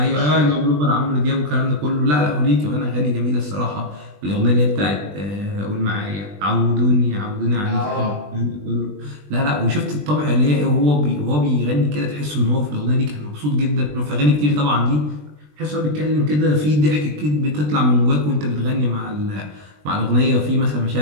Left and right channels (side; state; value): left; late; 20 ms